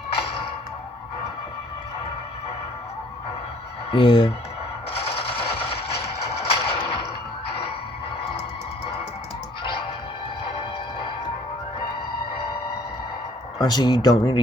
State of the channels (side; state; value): both; normal; correlation 0.58